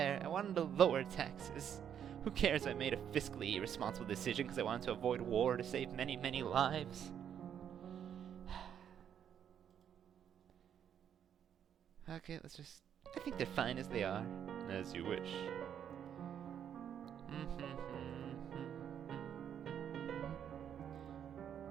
I wanted to lower taxes. Who cares if I made a fiscally irresponsible decision because I wanted to avoid war to save many, many lives? Okay, I think they're fine as they are. As you wish.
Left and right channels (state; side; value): quieter; left; 9.0 dB